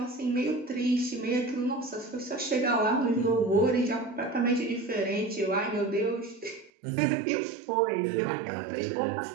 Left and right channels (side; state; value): left; drops out; at 6.7 s